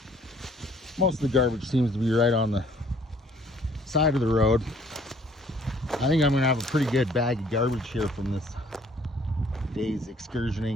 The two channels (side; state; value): both; normal; correlation 0.59